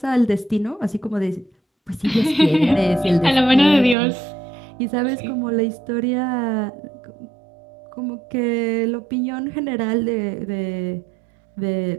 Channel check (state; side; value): drops out; left; at 4.0 s